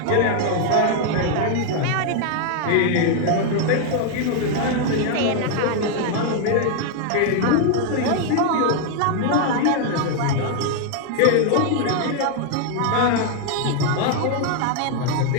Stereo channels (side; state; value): both; different; correlation 0.00